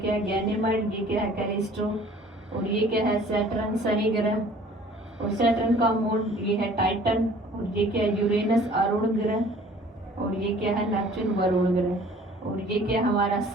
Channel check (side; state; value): both; normal; correlation 0.52